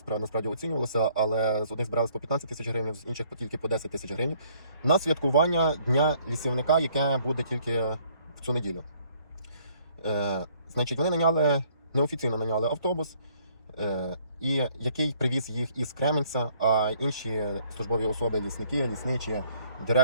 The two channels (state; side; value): inverted; both; correlation -0.63